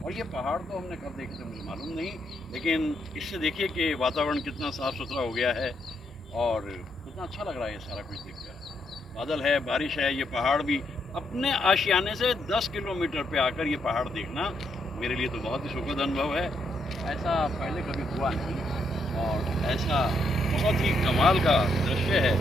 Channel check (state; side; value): normal; both; correlation 0.77